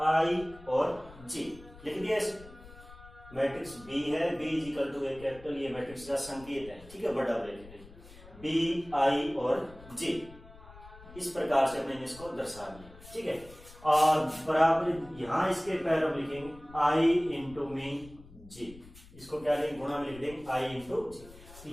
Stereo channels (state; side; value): noise; left; rumble, 20 dB below the sound